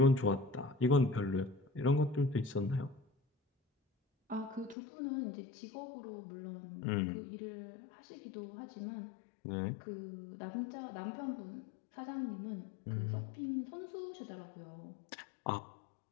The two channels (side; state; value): right; drops out; at 4.8 s